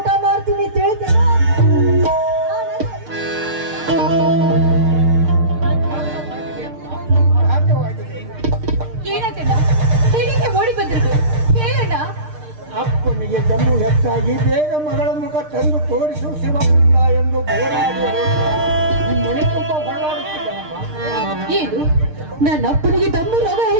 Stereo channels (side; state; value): left; late; 6.6 ms